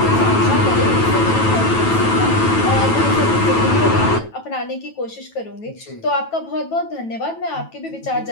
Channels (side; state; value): right; late; 9.1 ms